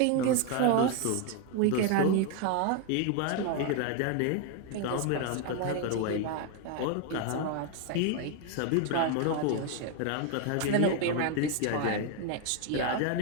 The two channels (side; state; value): both; different; correlation 0.01